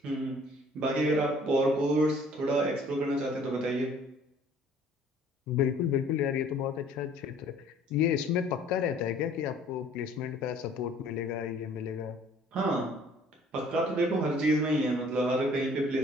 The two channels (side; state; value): both; normal; correlation 0.55